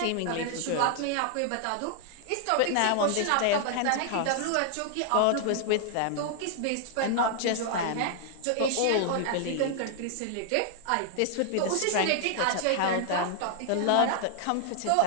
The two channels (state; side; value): different; both; correlation 0.00